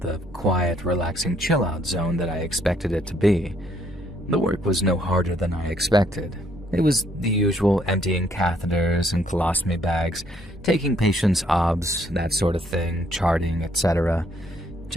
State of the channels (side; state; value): both; normal; correlation 0.67